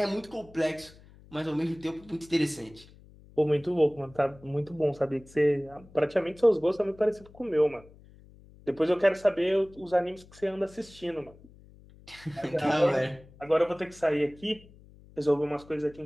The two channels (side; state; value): left; noise; hum, 23 dB below the sound